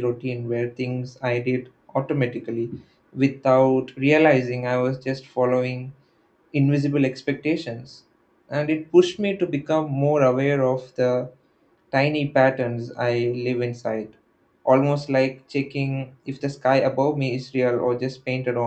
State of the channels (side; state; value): both; identical; correlation 1.00